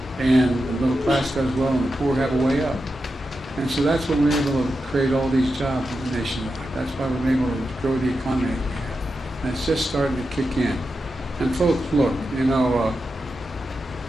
And the middle class does well, and the poor have a way up. And so that's when we were able to create all these jobs nationwide. That's why we're able to grow the economy. And it's just starting to kick in. And folks, look,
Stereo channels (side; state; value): both; normal; correlation 0.89